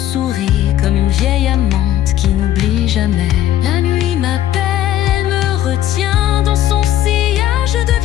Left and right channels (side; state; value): right; quieter; 12.5 dB